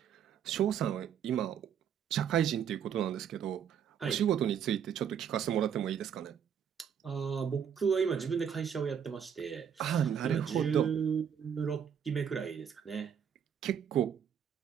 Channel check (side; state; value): left; quieter; 8.2 dB